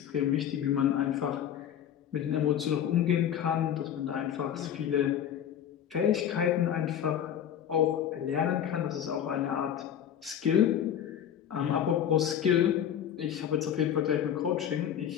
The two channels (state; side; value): quieter; right; 9.6 dB